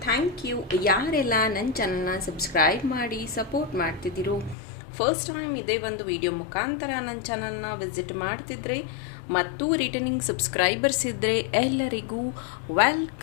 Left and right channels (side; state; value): right; drops out; at 4.5 s